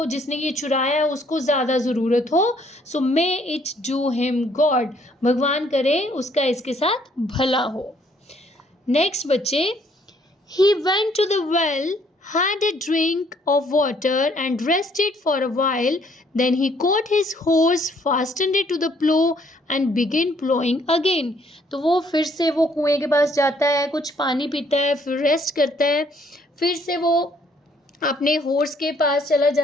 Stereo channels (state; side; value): normal; both; correlation 0.65